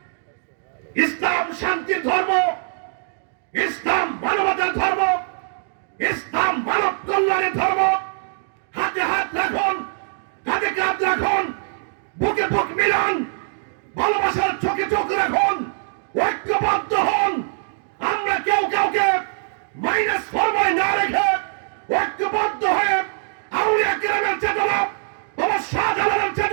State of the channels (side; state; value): left; silent; digital silence